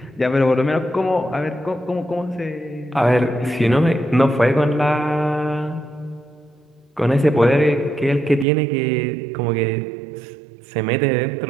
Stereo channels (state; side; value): drops out; left; at 8.5 s